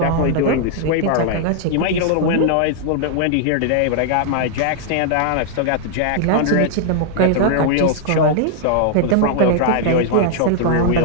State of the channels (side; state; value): both; different; correlation -0.01